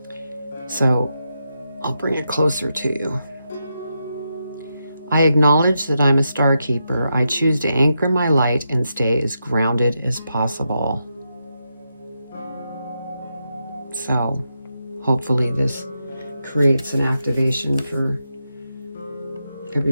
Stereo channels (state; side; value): inverted; both; correlation -0.85